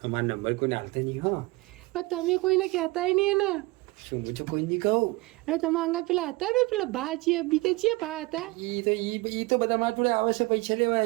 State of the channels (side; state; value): left; quieter; 22.7 dB